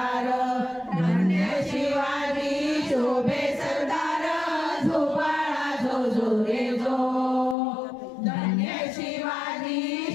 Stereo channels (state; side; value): drops out; right; at 7.6 s